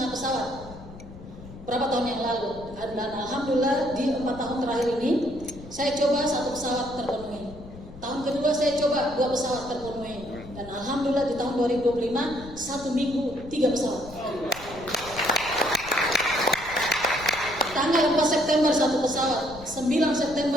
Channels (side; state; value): left; noise; rumble, 16 dB below the sound